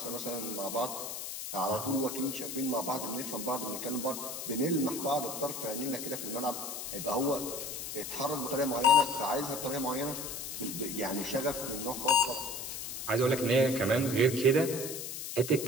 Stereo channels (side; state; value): left; noise; hiss, 6 dB below the sound